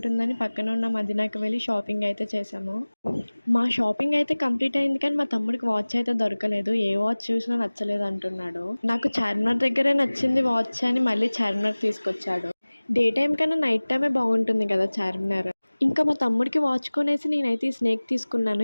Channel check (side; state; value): both; inverted; correlation -1.00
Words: పక్కన ఉన్న మదీనాకి వెళ్ళి షాపింగ్ అయితే చేశాము. మా షాపింగ్ అయితే కంప్లీట్ అయింది కానీ మా తమ్ముడికి వాచ్ అయితే దొరకలేదు. ఏ వాచ్ చూసినా నచ్చలేదు అంటున్నాడు. నాకు చార్మినార్ దగ్గరే నచ్చింది వాచ్ అని మళ్ళీ చార్మినార్ తీసుకొచ్చాడు. డే టైమ్ కన్నా నైట్ టైమే బాగుంటుంది కదా చార్మినార్. మా తమ్ముడికి వాచ్ కొనేసి నేనైతే ఈ స్నేక్ తీసుకున్నాను.